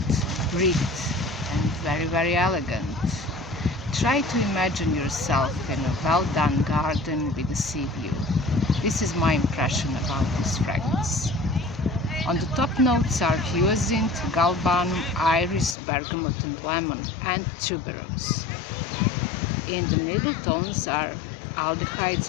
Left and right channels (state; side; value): drops out; right; at 15.8 s